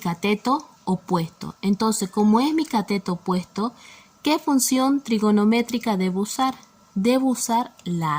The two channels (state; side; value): identical; both; correlation 1.00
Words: opuesto. Entonces, como es mi cateto opuesto, ¿qué función trigonométrica debo usar? Debo usar